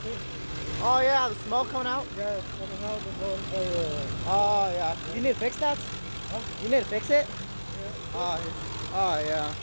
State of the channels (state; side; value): inverted; both; correlation -1.00